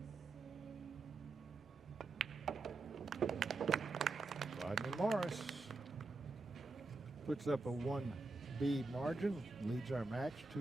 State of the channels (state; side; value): quieter; left; 3.5 dB